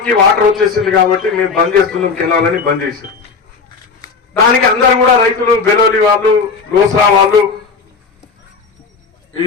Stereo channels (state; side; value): quieter; right; 5.0 dB